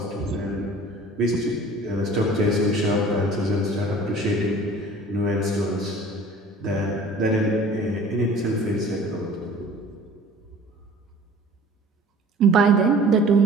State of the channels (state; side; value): normal; both; correlation 0.47